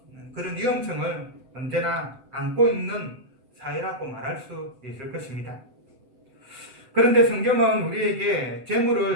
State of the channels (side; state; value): left; late; 7.9 ms